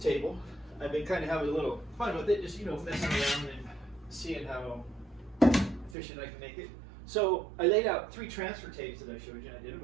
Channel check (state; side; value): drops out; left; at 6.0 s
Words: I've been kind of having a little fun with it, just messing around and seeing how efficient I can make it. So I laid out 3 transfer tapes that I showed you, and I did them.